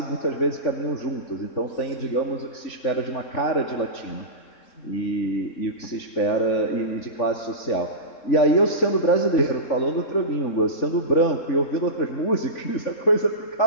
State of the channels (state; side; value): late; right; 3.5 ms